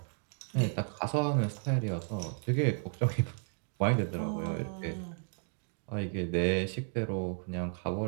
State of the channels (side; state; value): left; silent; 56 dB below the other